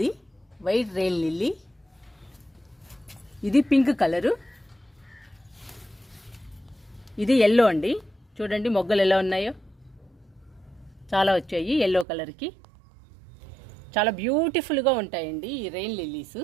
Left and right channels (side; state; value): left; drops out; at 12.1 s